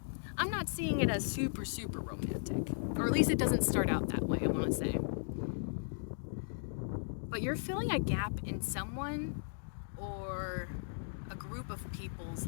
I'm not seeing it as super, super romantic. Or at least it doesn't start out that way, I want to say. But you're filling a gap in someone or a group of people's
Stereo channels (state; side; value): silent; right; digital silence